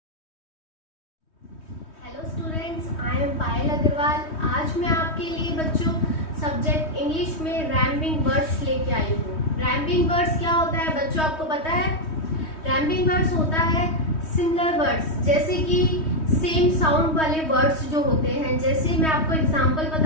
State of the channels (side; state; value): right; late; 3.2 ms